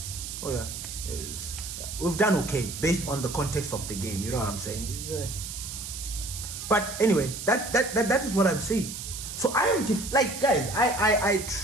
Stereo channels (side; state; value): right; noise; hiss, 8 dB below the sound